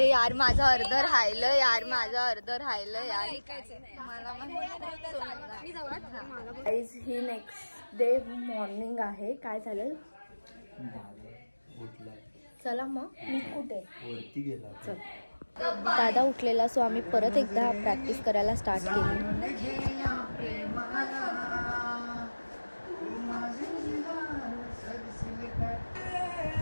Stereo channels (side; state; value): both; inverted; correlation -1.00